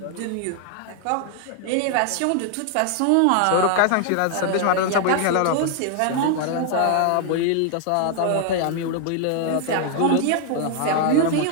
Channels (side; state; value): both; different; correlation 0.00